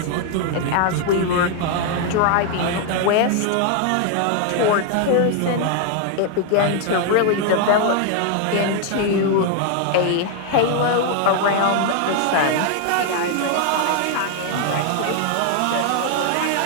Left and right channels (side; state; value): both; different; correlation 0.00